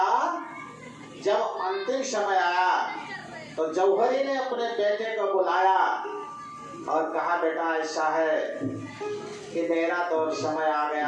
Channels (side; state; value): both; identical; correlation 1.00